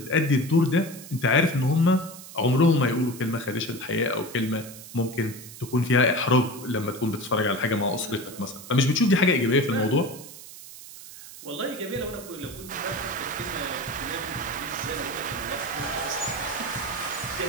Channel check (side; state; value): right; noise; hiss, 15 dB below the sound